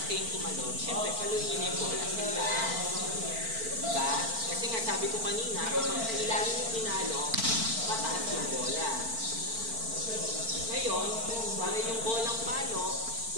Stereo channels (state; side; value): late; left; 4.5 ms